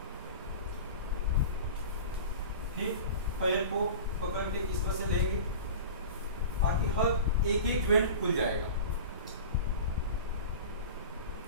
फिर पैर को पकड़ के इस तरह से लेंगे ताकि हर एक एक ज्वाइंट खुल जाएगा।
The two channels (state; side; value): inverted; both; correlation -0.34